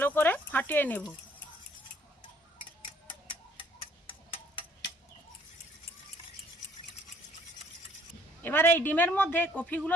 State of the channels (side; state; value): both; normal; correlation 0.60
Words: করে ফাটিয়ে নেব। এবার এই ডিমের মধ্যে কফিগুলো